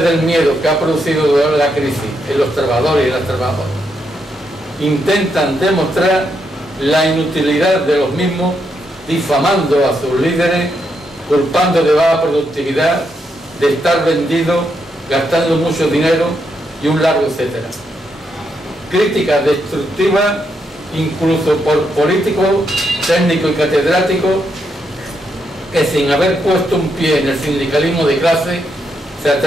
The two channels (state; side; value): normal; both; correlation 0.80